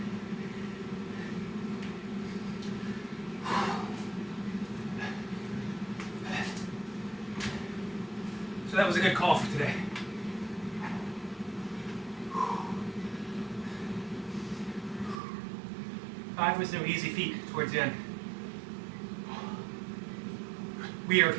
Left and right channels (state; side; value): drops out; left; at 15.2 s